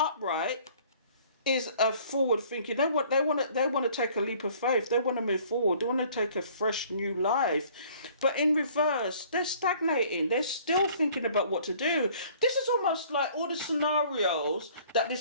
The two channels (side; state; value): both; inverted; correlation -0.55